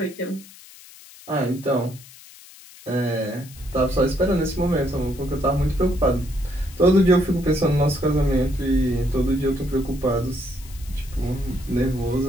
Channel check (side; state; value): left; noise; hiss, 20 dB below the sound